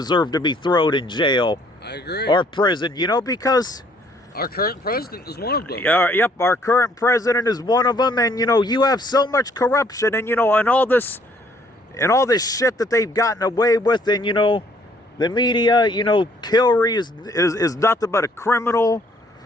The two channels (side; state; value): both; normal; correlation 0.63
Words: to be thrown in jail. I agree. Or prison, because our current president is one of them. Yep, our current president is one of them, and you have so much corruption, and and all this shit that they've gotten away with, and the media, Hillary is nothing but a criminal